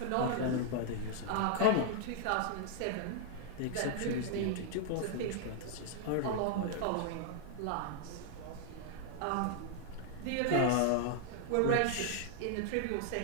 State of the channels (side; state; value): both; different; correlation 0.00